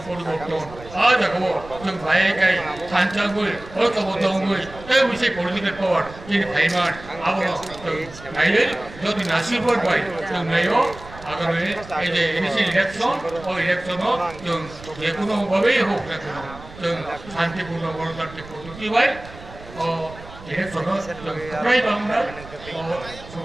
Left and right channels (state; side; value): noise; right; rumble, 17 dB below the sound